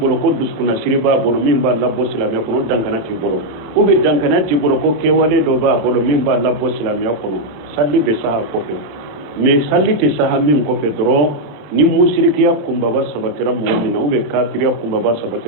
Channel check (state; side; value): late; left; 27 ms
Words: ko dusukunnasiri b'a bolo min b'a labɔ silamɛya kɔnɔ o dankaniya t'i bolo ou bien dankaniya t'i bolo ko kɛwale dɔ b'a bolo min b'a labɔ silamɛya kɔnɔ sali bɛ se a kɔfɛ mais sali tɛ se a min kɔfɛ dɔrɔn ni musirikiya kumbaba sabatira mɔgɔ min na ou bien kafiriya kumbaba